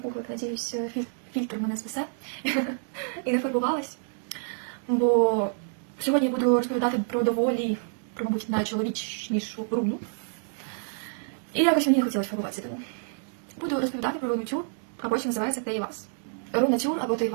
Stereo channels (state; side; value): silent; left; digital silence